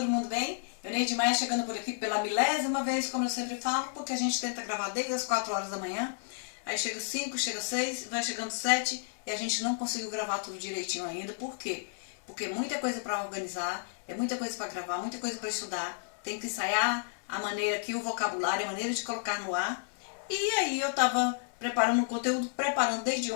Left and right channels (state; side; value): silent; right; 57 dB below the other